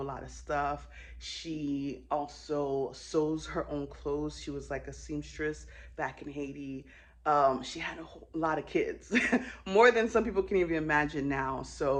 a lot of stuff. She also sews her own clothes. She was like a seamstress back in Haiti. She had a whole lot of kids, more than some people can even imagine now.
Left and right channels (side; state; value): both; identical; correlation 1.00